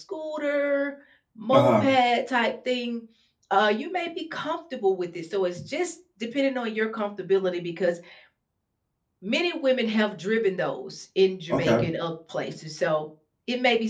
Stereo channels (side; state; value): both; identical; correlation 1.00